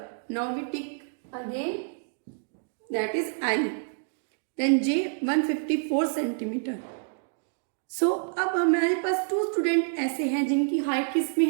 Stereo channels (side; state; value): left; silent; digital silence